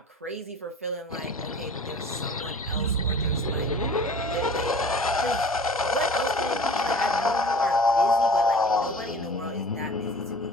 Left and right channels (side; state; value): both; normal; correlation 0.44